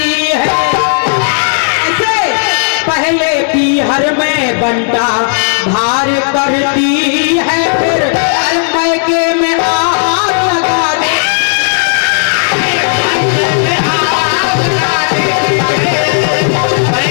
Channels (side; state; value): right; silent; digital silence